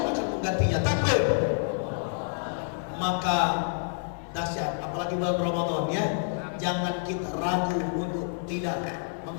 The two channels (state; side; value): silent; right; digital silence